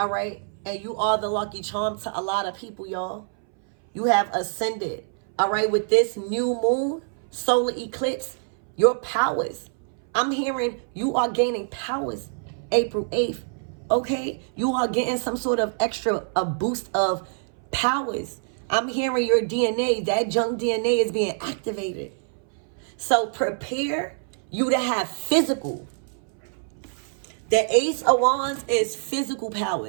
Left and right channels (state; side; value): silent; left; 60 dB below the other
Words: right. And you are the lucky charm to a lot of people, y'all. You have ascended. All right, with this new moon, solar eclipse, your powers. I'm hearing you are gaining powers April 8th. Okay? You are getting some sort of a boost of powers. I'm hearing your DNA, that junk DNA is being activated. So prepare you to have physical. The Ace of Wands is physical